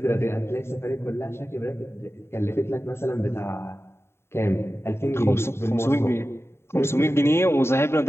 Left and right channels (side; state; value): right; late; 0.12 ms